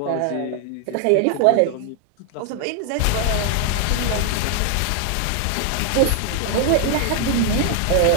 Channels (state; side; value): different; both; correlation 0.00